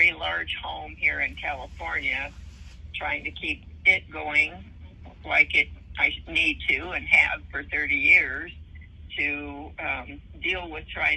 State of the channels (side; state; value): both; identical; correlation 1.00